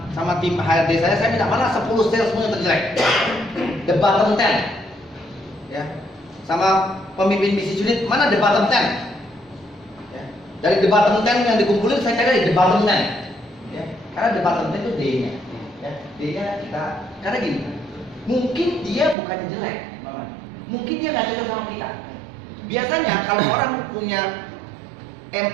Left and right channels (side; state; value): left; drops out; at 19.2 s